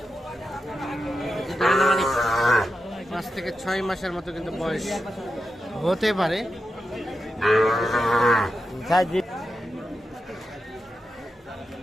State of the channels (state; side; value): normal; both; correlation 0.89